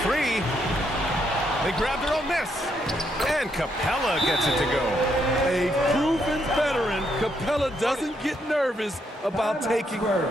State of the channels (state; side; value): normal; both; correlation 0.76